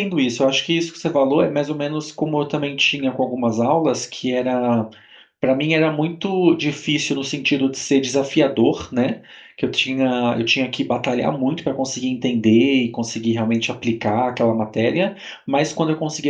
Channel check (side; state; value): both; identical; correlation 1.00